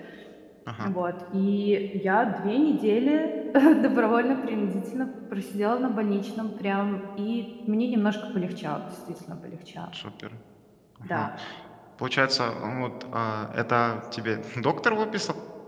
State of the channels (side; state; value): both; identical; correlation 1.00